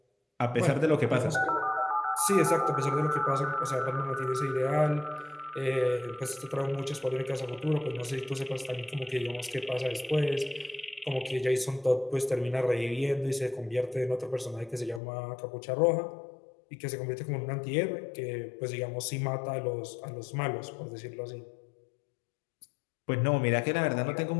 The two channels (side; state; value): right; drops out; at 15.0 s